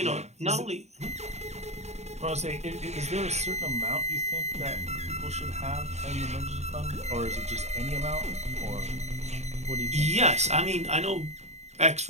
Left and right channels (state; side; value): late; left; 0.32 ms